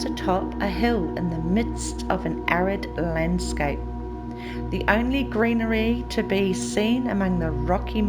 atop a hill in the midst of an arid landscape. The only greenery to be seen among the rocky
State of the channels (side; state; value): both; identical; correlation 1.00